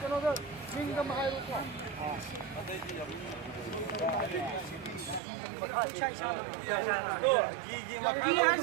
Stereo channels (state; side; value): drops out; left; at 5.2 s